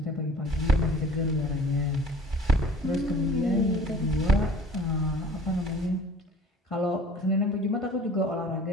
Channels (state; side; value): normal; both; correlation 0.48